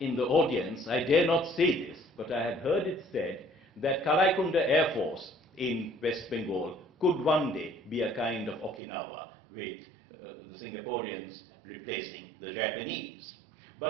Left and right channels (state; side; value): drops out; left; at 8.8 s